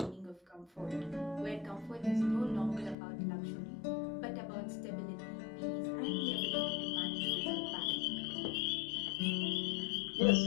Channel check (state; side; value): drops out; right; at 3.0 s